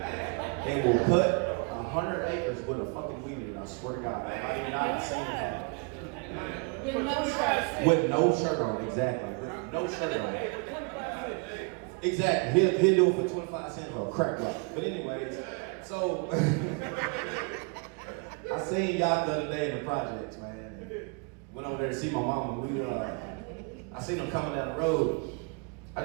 will cut 100 acres with a fucking weed eater. I swear to God, I've not seen it. With no shirt on, exactly. With no shirt on. Exactly. He'll do it for 25 cents for a crack rock. But anyways, so I seen y'all the other day in the projects, man. Went over there to see my mama. I seen him coming down the road. I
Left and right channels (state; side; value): quieter; left; 33.9 dB